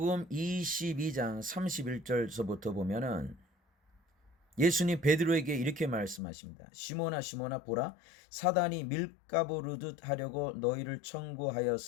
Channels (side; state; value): right; drops out; at 6.2 s